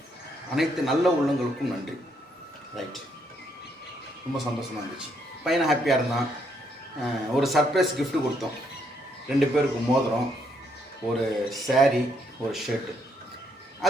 அனைத்து நல்ல உள்ளங்களுக்கும் நன்றி. ரைட், ரொம்ப சந்தோஷமாக இருந்துச்சு. பையனை ஹாப்பியாக இருந்தான். ஒரு சர்ப்ரைஸ் கிஃப்ட்டு கொடுத்தோம். 2 பேருக்கு மோதிரம், ஒரு சாரீ, ஒரு ஷர்ட்டு.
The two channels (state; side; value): normal; both; correlation 0.73